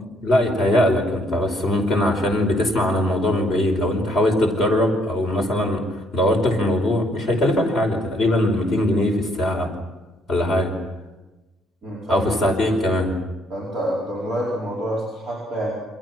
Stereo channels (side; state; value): both; normal; correlation 0.68